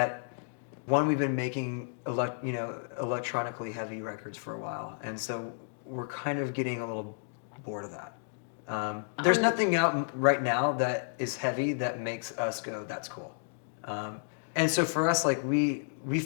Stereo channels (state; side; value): silent; right; digital silence